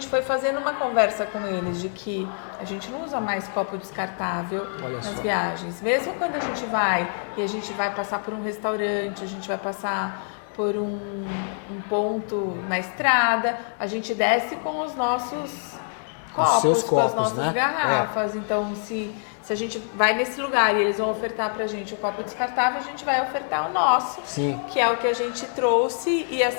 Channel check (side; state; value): right; silent; 62 dB below the other